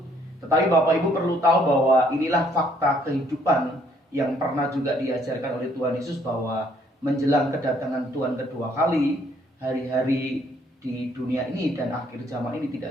Tetapi Bapak Ibu perlu tahu bahwa inilah fakta kehidupan yang pernah juga diajarkan oleh Tuhan Yesus, bahwa menjelang kedatangan Tuhan kedua kali, hari-hari di dunia ini dan akhir zaman ini tidak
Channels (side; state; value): both; normal; correlation 0.66